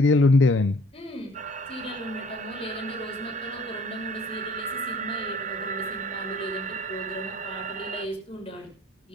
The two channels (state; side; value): normal; both; correlation 0.53